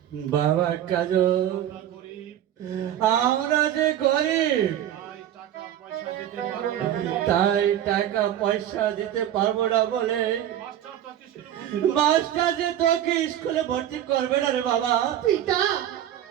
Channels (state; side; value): quieter; left; 11.2 dB